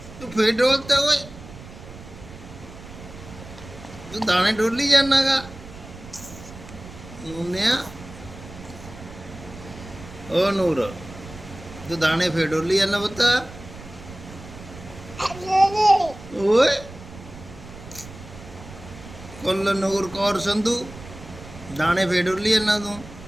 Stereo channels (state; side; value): noise; right; rumble, 16 dB below the sound